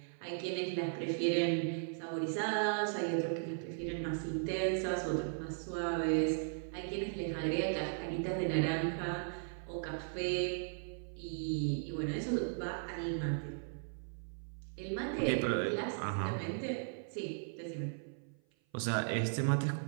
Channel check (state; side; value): silent; left; 53 dB below the other